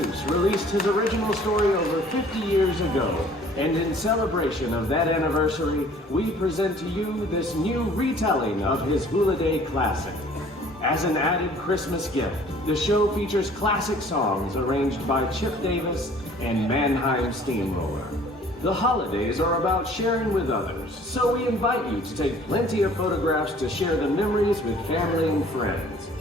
released his original story over 50 years ago, and in celebration of that anniversary, we present to you this new retelling of his Who-liday classic. As an added Christmas gift, the show features classic songs arranged by Chip Davis and Mannheim Steamroller. The holidays are about sharing with others, so we invite you to take plenty of photographs to share the memories with family and friends.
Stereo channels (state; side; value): normal; both; correlation 0.53